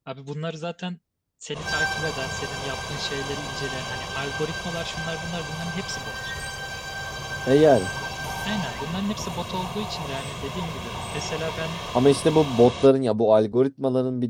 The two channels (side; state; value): both; identical; correlation 1.00